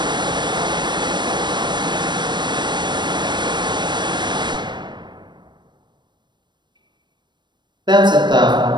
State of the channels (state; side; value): late; left; 0.22 ms